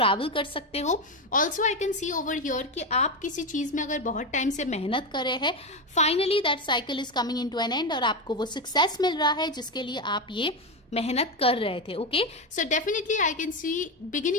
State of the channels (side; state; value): both; normal; correlation 0.13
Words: कर सकते हो। Also I can see over here कि आप किसी चीज में अगर बहुत टाइम से मेहनत कर रहे हैं, finally that cycle is coming into an end और आपको वो success मिल रहा है जिसके लिए आप ये मेहनत कर रहे थे। Okay, so definitely I can see